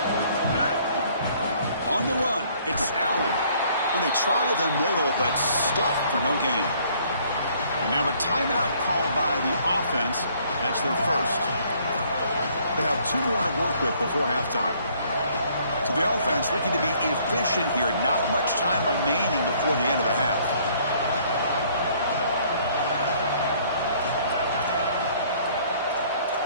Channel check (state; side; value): inverted; both; correlation -0.61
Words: On the run, it's Allen. Well, they try the middle, but stuffed for no gain. And now a timeout called by the offense. That's their first. They have 2 more to work with before halftime. So the offense looking to be efficient here. Not much time remaining before the end of the half.